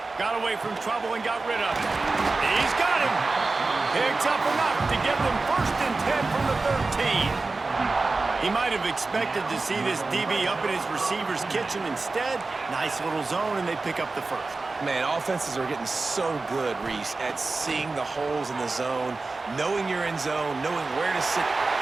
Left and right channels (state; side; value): quieter; left; 3.7 dB